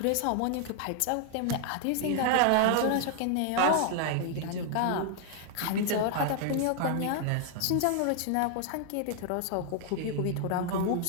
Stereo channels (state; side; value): different; both; correlation 0.00